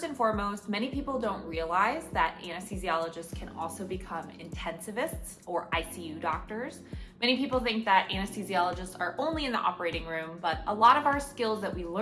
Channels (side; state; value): both; identical; correlation 1.00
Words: and foremost, many people don't realize that anesthesiologists can also become intensivists or ICU doctors. Many people think that anesthesiologists are only in the operating room, but a lot of our skills that we